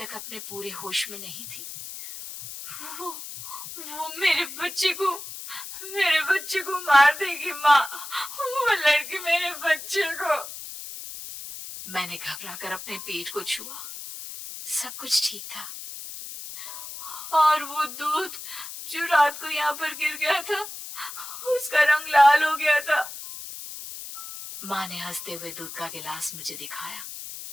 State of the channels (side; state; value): left; noise; hiss, 10 dB below the sound